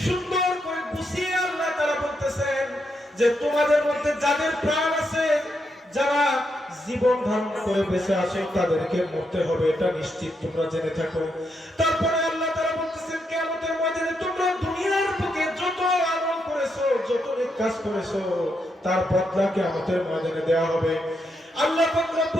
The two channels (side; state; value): both; normal; correlation 0.81